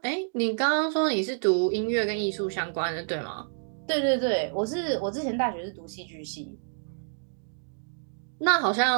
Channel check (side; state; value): left; silent; digital silence